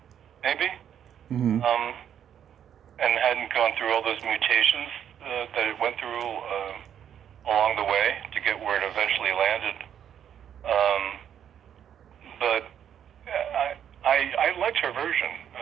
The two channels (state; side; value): quieter; left; 9.3 dB